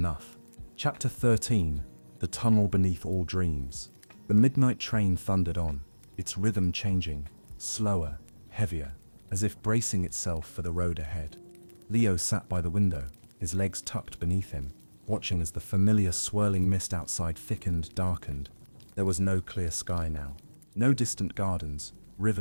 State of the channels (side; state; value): both; inverted; correlation -1.00